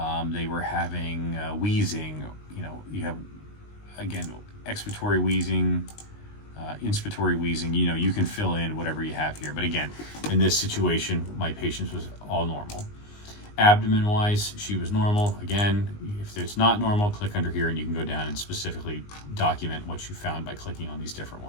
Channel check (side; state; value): right; late; 19 ms